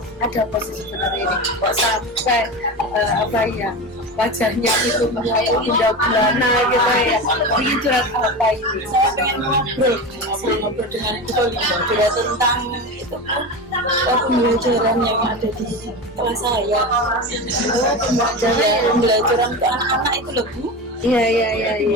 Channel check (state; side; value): normal; both; correlation 0.24